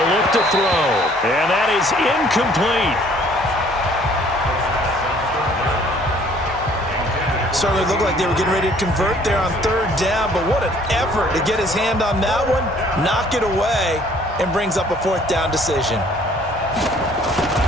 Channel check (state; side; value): noise; left; hum, 23 dB below the sound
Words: look to throw. And that is incomplete. Certainly looked like they were getting ready to convert there on 3rd down, but what an effort to get his hand on that one, knock it away, and brings up a 4th down decision.